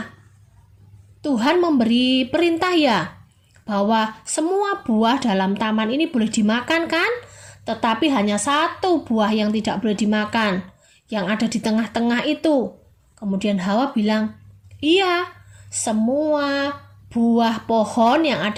Tuhan memberi perintah ya bahwa semua buah dalam taman ini boleh dimakan kan? Tetapi hanya satu buah yang tidak boleh dimakan, yang ada di tengah-tengah itu. Kemudian Hawa bilang, iya, semua buah pohon yang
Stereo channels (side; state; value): both; identical; correlation 1.00